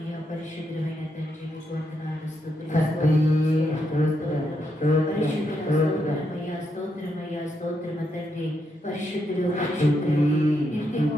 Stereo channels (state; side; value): normal; both; correlation 0.80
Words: పరిశుద్ధమైన తండ్రి, మీకు వందనాలు, స్తోత్రమయ్యా, స్తోత్రమయ్యా, స్తోత్రమ తండ్రి. పరిశుద్ధుడు పరిశుద్ధుడు నిత్యము